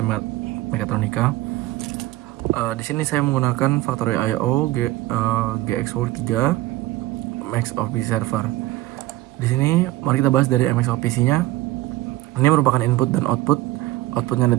mekatronika. Di sini saya menggunakan Factorio IO GXWorks 3 MXOP server. Di sini mari kita bahas dari MXOPC-nya. Ini merupakan input dan output. Outputnya ada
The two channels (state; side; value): quieter; left; 16.9 dB